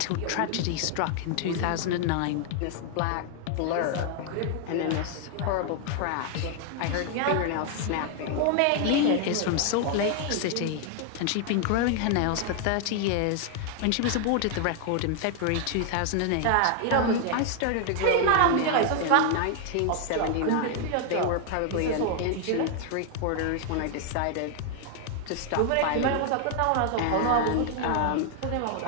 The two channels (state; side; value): different; both; correlation 0.00